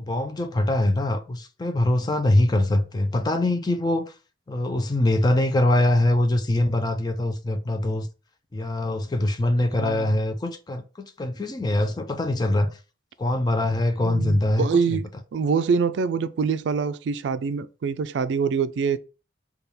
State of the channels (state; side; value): normal; both; correlation 0.75